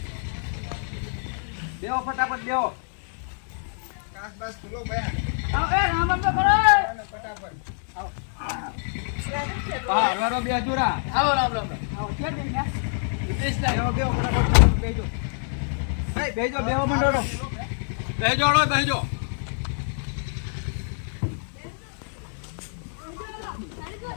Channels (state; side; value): silent; right; digital silence